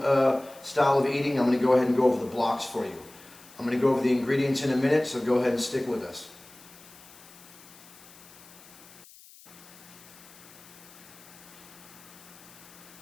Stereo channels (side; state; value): left; noise; hiss, 22 dB below the sound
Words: style of eating, I'm going to go ahead and go over the blocks for you. I'm going to go over the ingredients in a minute, so go ahead and stick with us.